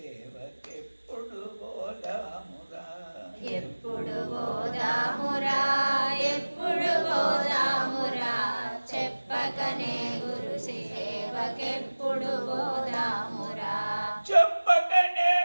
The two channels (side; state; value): both; inverted; correlation -1.00